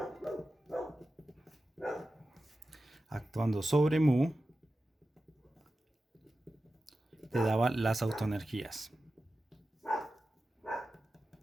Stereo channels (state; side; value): normal; both; correlation 0.93